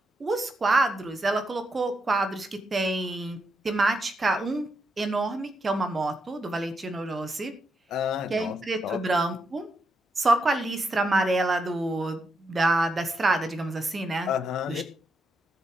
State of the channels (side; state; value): both; normal; correlation 0.82